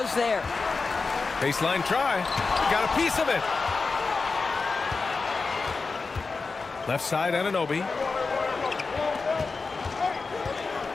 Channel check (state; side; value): quieter; right; 4.3 dB